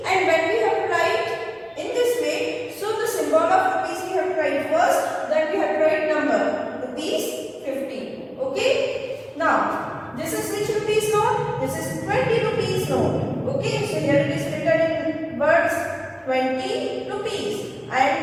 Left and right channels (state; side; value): identical; both; correlation 1.00